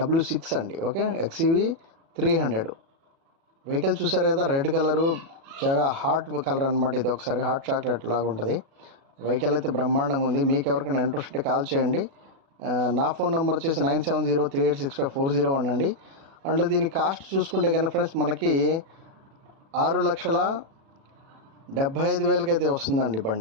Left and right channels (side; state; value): left; late; 37 ms